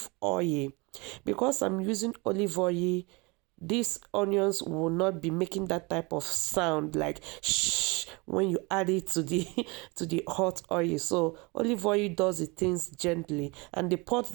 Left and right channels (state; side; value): quieter; left; 27.1 dB